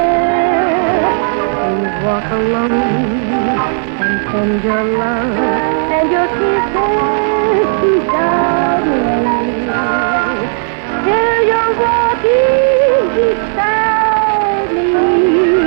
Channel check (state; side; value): silent; left; digital silence